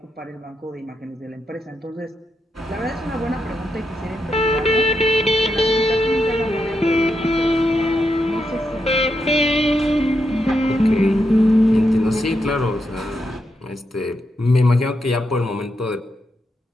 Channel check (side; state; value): both; normal; correlation 0.84